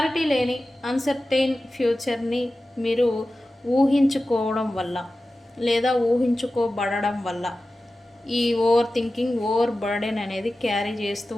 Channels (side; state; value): both; normal; correlation 0.95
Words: లేని అన్సర్టైన్ ఫ్యూచర్ని మీరు ఊహించుకోవడం వల్ల లేదా ఊహించుకోబడడం వల్ల ఈ ఓవర్ థింకింగ్, ఓవర్ బర్డెన్ అనేది క్యారీ చేస్తూ